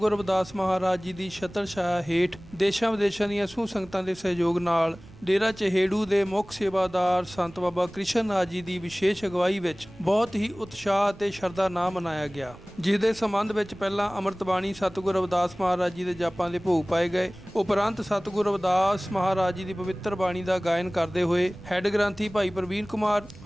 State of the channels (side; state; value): right; noise; rumble, 21 dB below the sound